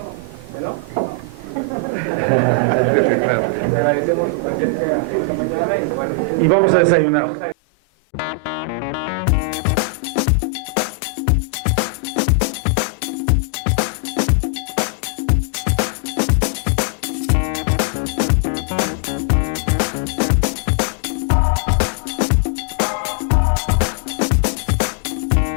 ¿no? Le agradecemos tenemos su presencia esta mañana y bueno. Y vamos a desayunar. Vamos a desayunar.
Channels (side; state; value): right; drops out; at 7.6 s